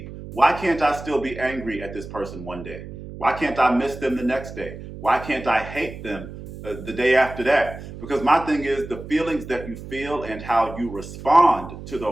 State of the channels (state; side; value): noise; right; hum, 12 dB below the sound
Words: Why can't I still be angry at this person one day? Why can't I miss them the next day? Why can't I hate them the day after that? Because my thing is, the feelings that you feel and how you respond to